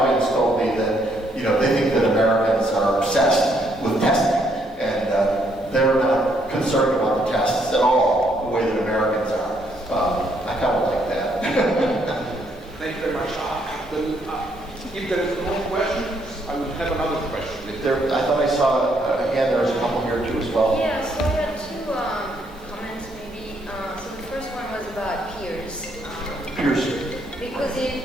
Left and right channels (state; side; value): normal; both; correlation 0.71